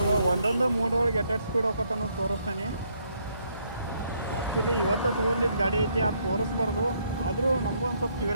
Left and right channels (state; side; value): inverted; both; correlation -0.71